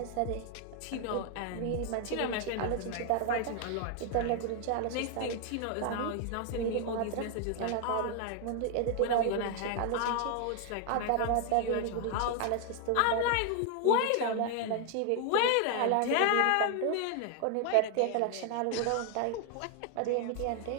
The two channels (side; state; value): both; different; correlation 0.00